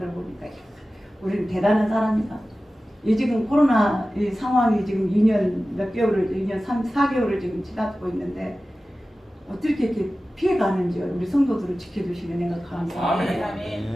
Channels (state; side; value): normal; both; correlation 0.96